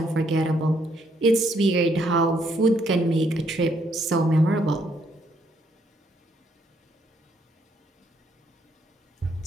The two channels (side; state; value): both; normal; correlation 0.71